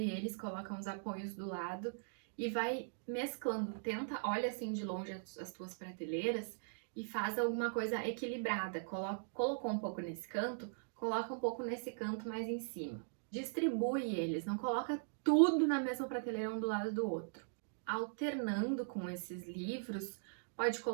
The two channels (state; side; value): silent; left; digital silence